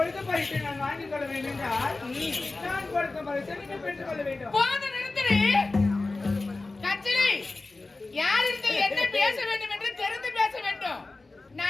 பரிசை நான் வாங்கிக் கொள்ள வேண்டும் என்றால் நான் கொடுக்க பரிசை நீங்கள் பெற்றுக் கொள்ள வேண்டும். போது நிறுத்திடு. கச்சிலை, யாரிடத்தில் என்ன பேச வேண்டும் என்று தெரிந்து பேச வேண்டும்.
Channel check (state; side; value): quieter; right; 3.4 dB